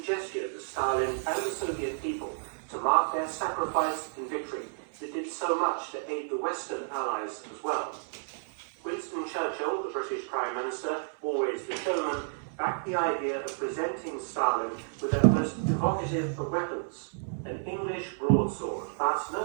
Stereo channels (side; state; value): left; silent; 57 dB below the other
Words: gesture to Stalin and the Soviet people to mark their sacrifice and victory that did so much to aid the Western Allies as well. Winston Churchill, the British Prime Minister, always the showman, backed the idea of presenting Stalin with their most evocative of weapons, an English broadsword, but